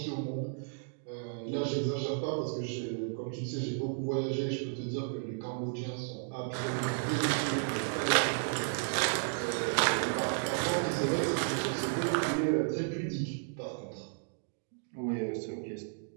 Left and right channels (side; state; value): left; silent; digital silence